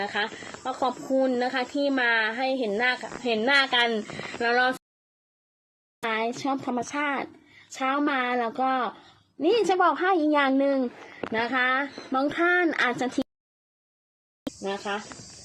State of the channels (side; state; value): both; identical; correlation 1.00